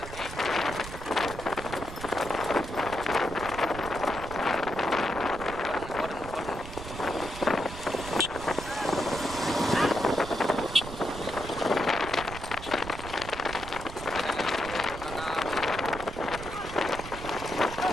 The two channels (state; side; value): noise; right; rumble, 11 dB below the sound